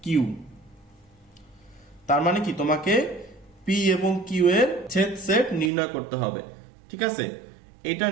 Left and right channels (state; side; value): drops out; left; at 5.7 s